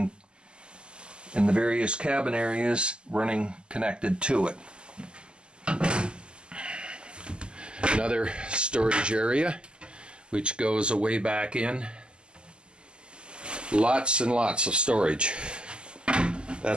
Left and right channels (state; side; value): late; left; 0.049 ms